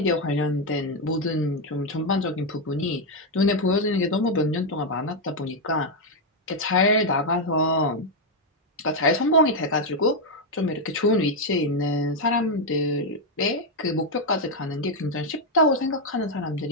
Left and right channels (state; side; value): normal; both; correlation 0.02